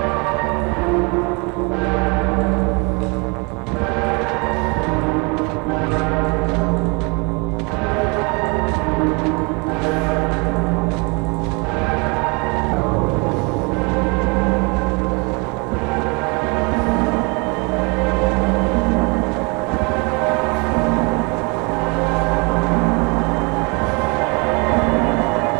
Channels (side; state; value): left; quieter; 30.2 dB